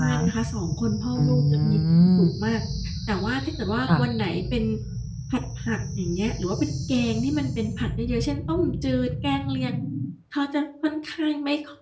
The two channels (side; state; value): both; identical; correlation 1.00